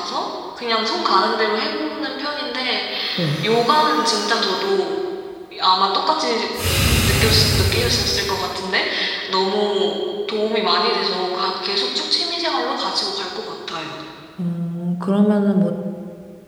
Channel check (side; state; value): both; identical; correlation 1.00